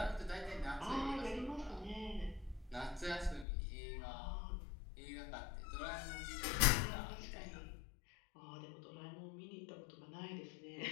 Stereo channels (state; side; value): drops out; right; at 3.5 s